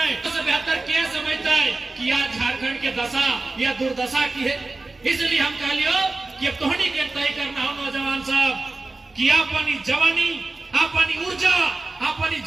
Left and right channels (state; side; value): quieter; left; 3.3 dB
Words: उससे बेहतर क्या समझता है कि आज झारखंड के दशा या दुर्दशा की है। इसलिए हम कह लियो कि अब तोहनी के तय करना हो नौजवान साहब कि अपनी जवानी, अपनी ऊर्जा, अपनी